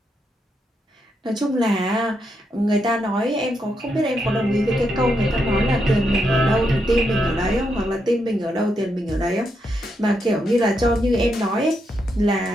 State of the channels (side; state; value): both; normal; correlation 0.81